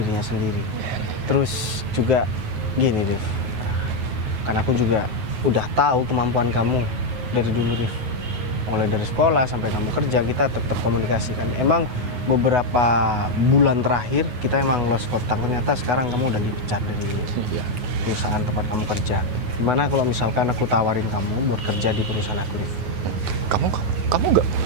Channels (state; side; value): late; left; 9.3 ms